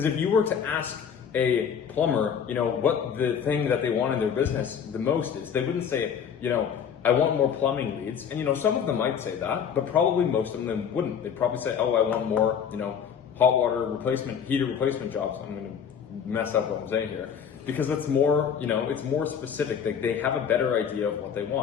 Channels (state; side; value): quieter; right; 7.6 dB